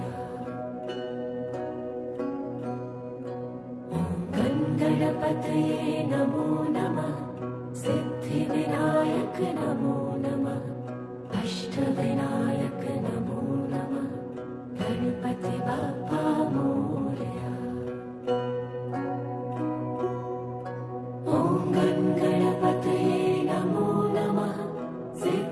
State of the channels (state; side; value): identical; both; correlation 1.00